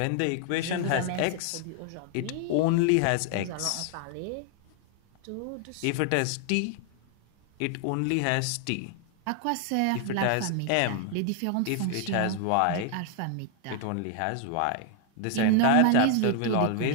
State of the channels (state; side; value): different; both; correlation 0.00